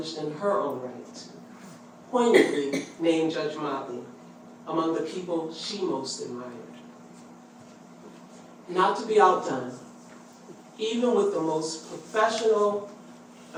in her own right, poignantly named Judge Motley among the people she most admired. not to be outdone, even with the most professional,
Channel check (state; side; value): identical; both; correlation 1.00